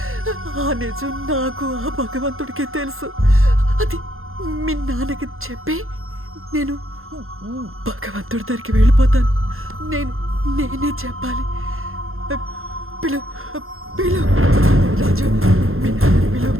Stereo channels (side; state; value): left; late; 0.61 ms